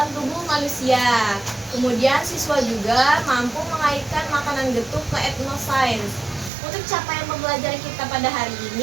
tubuh manusia. Kemudian siswa juga mampu mengaitkan makanan getuk ke etnosains. Untuk capaian pembelajaran kita pada hari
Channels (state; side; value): drops out; left; at 6.5 s